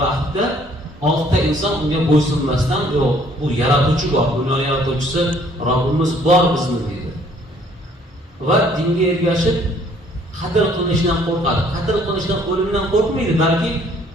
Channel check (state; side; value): normal; both; correlation 0.61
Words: vaqtda 6 ta inson unga bo'ysunmasdan, yo'q, bu yaratuvchi bor, dunyo yaratuvchisi Robbimiz bor bizni deydi. Va dinga ergashib qatl qilinishdan qo'rqadi. Qatl qilinishdan, o'limdan qo'rqmaydi, balki